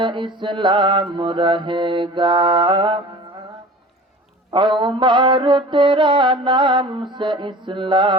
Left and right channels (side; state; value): both; normal; correlation 0.40